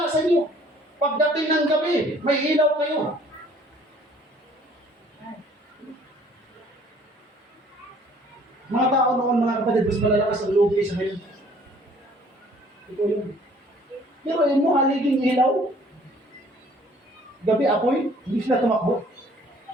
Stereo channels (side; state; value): both; normal; correlation 0.56